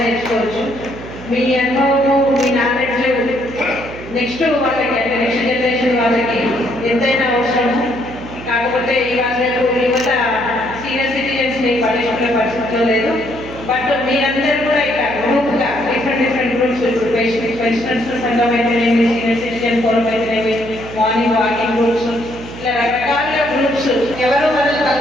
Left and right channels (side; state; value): right; noise; hum, 13 dB below the sound